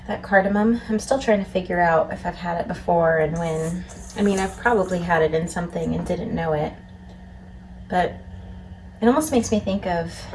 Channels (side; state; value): both; identical; correlation 1.00